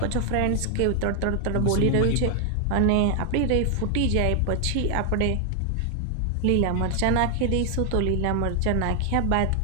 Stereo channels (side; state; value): both; different; correlation 0.00